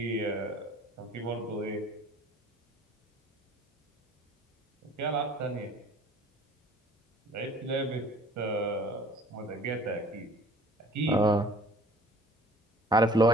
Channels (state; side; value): normal; both; correlation 0.51